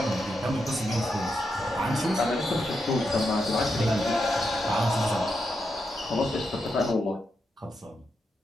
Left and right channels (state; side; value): normal; both; correlation 0.84